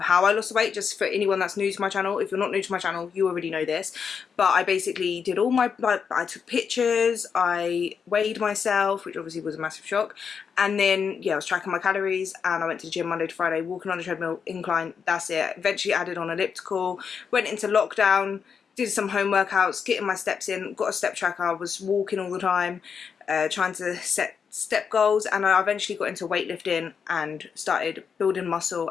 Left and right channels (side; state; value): right; quieter; 6.5 dB